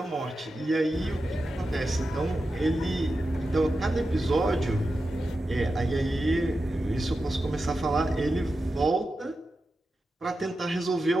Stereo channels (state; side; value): normal; both; correlation 0.91